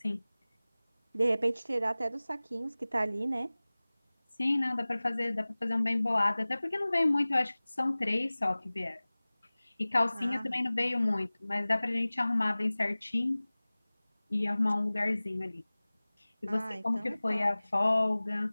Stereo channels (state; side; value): inverted; both; correlation -0.99